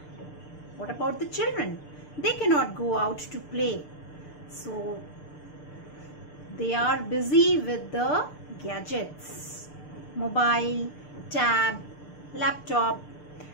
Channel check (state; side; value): late; right; 6.7 ms